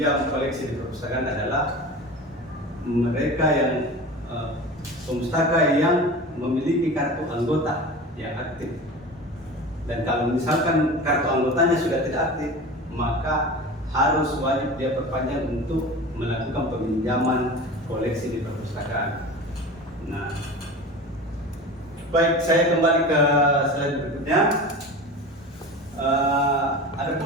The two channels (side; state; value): both; normal; correlation 0.33